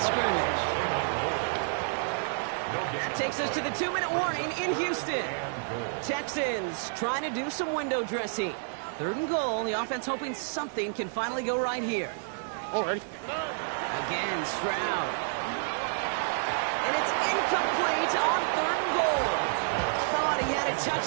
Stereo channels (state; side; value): silent; left; 58 dB below the other